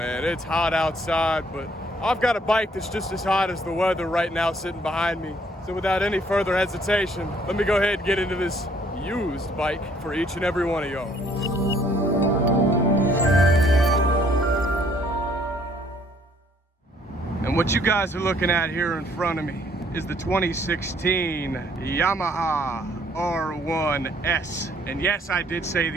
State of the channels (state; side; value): normal; both; correlation 0.63